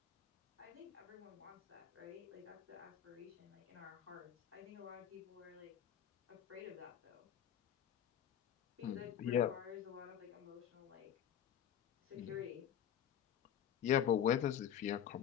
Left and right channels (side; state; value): right; quieter; 9.8 dB